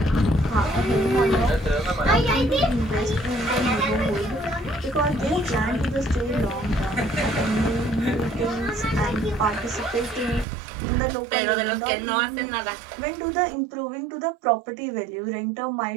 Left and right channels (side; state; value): left; drops out; at 10.5 s